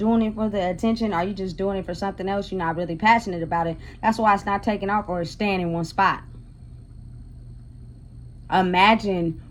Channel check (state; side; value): identical; both; correlation 1.00